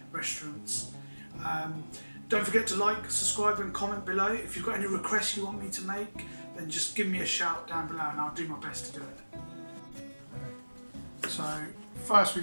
restaurants. Don't forget to like, subscribe and comment below. If you've got any requests you want me to make, then just give me a shout down below and I'll do my best to do it. So first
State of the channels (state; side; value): inverted; both; correlation -1.00